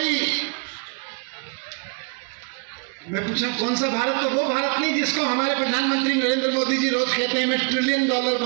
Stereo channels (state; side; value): quieter; left; 38.4 dB